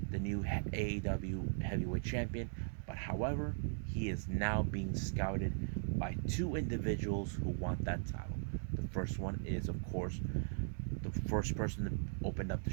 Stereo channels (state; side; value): silent; left; digital silence